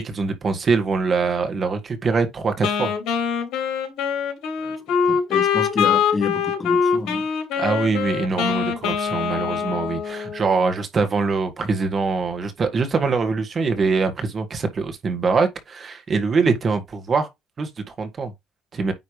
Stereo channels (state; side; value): normal; both; correlation 0.70